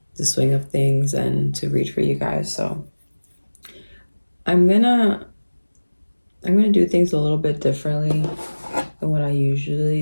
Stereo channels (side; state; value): both; inverted; correlation -1.00